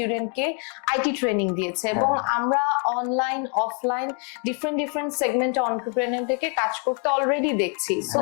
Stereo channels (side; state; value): right; quieter; 39.3 dB